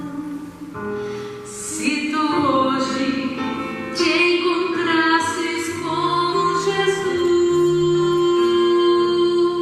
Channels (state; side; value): identical; both; correlation 1.00